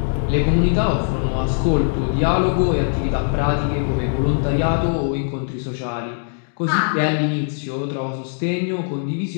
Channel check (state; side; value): silent; right; digital silence